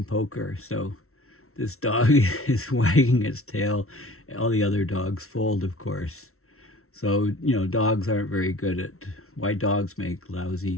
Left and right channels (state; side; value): late; right; 0.63 ms